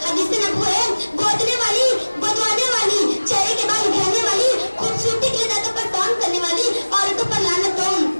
हदीस में नबू है, गोदने वाली, बदवाने वाली, चेहरे के बाल घेरने वाली, खूबसूरती के लिए दांतों पर काम करने वाली औरतों पर लानत हो।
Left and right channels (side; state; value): both; inverted; correlation -1.00